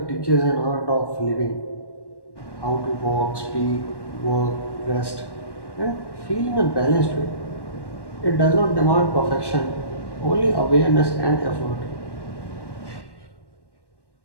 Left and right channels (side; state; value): right; late; 1.1 ms